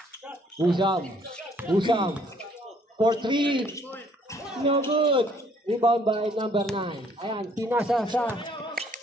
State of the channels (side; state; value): both; normal; correlation 0.63